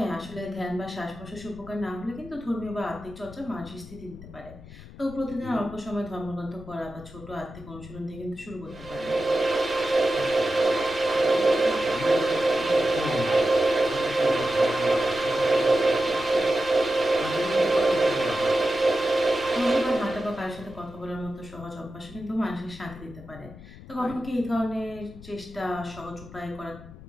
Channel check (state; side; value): noise; left; rumble, 17 dB below the sound